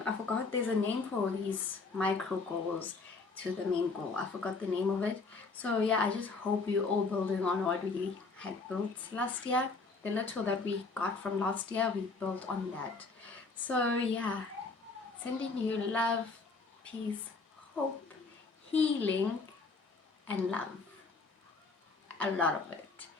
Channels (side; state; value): right; quieter; 4.1 dB